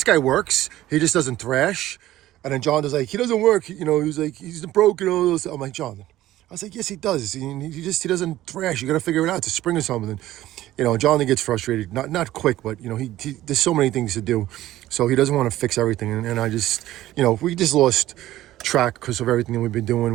guy works. He just doesn't thrash. And then John was like, he doesn't work. You know, he was like, he's broken all those. I'm like, John. I was like, yes, he does. He doesn't thrash. You got to figure it out. It's a spring or something. You know, John gets frustrated. Not quick, but you know, there's so many things to do, so he doesn't want to fix everything. And I just, you know, we just lost track because of everything that we've been doing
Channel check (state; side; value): quieter; left; 14.8 dB